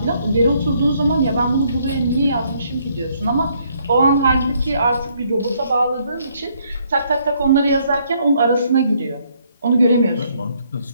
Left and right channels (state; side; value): inverted; both; correlation -0.69